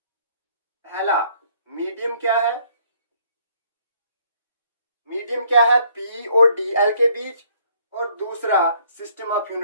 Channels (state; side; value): inverted; both; correlation -0.64